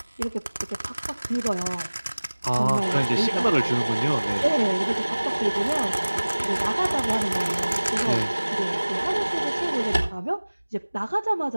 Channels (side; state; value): both; inverted; correlation -1.00